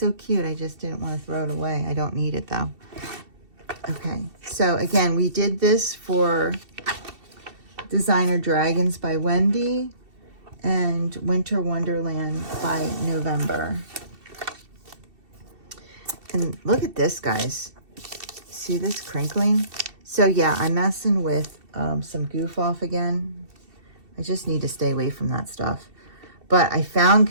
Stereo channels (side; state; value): left; late; 2.7 ms